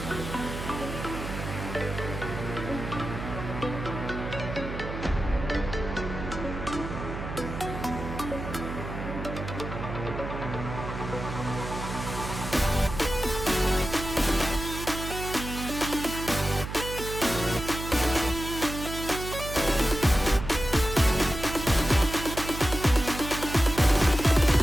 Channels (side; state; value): right; noise; hum, 7 dB below the sound